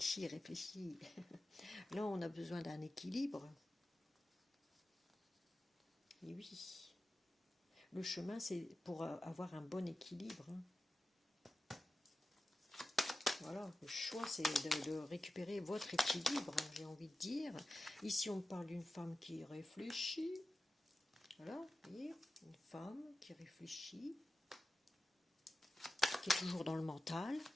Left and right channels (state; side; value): normal; both; correlation 0.93